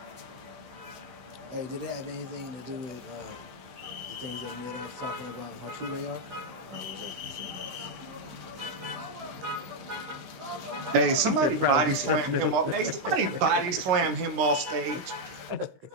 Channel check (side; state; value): left; late; 16 ms